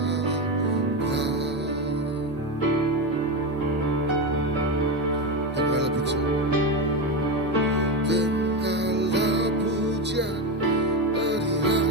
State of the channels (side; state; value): both; normal; correlation 0.15